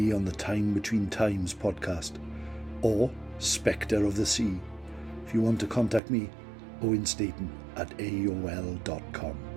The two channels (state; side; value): drops out; left; at 6.0 s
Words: on the Time Between Times podcast or Spectre of the Sea. If you want to contact me, owenstaten@aol.com.